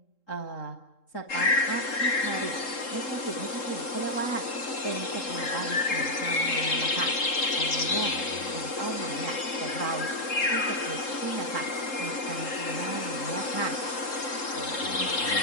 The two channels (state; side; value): late; right; 3.7 ms